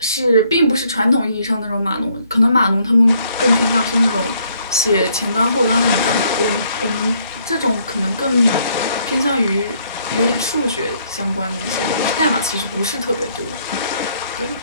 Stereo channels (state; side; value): inverted; both; correlation -0.68